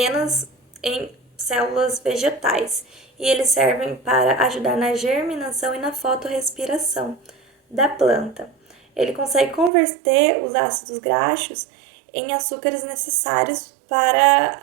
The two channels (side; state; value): left; drops out; at 9.7 s